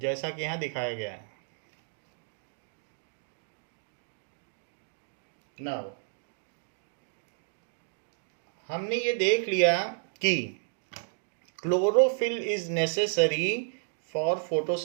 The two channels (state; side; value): silent; left; digital silence